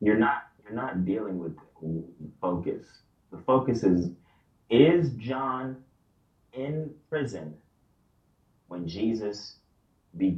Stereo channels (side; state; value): both; identical; correlation 1.00